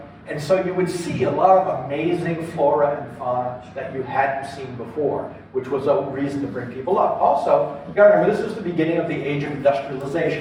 And so you would see a lot of amazing flora and fauna that you hadn't seen before, which was a reason to bring people up. Also, you gotta remember, this is the beginning of the age of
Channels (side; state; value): both; identical; correlation 1.00